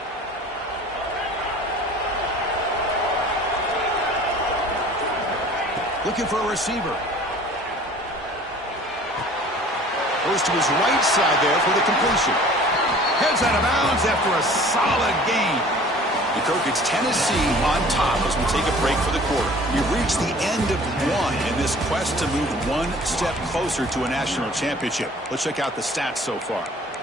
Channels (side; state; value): both; normal; correlation 0.48